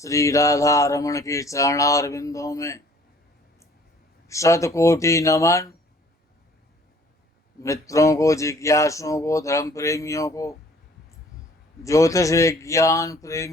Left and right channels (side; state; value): both; normal; correlation 0.56